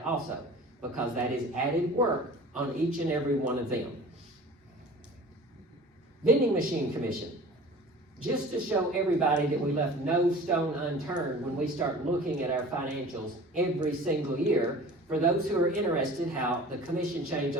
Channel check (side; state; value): both; normal; correlation 0.42